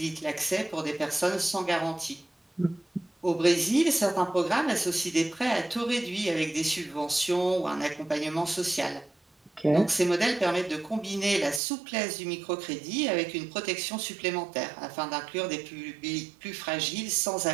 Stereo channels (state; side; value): drops out; left; at 11.6 s